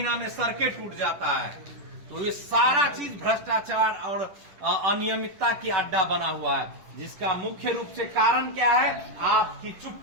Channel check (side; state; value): left; late; 10 ms